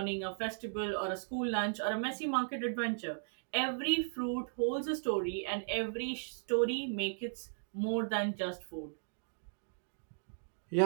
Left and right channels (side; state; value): left; silent; digital silence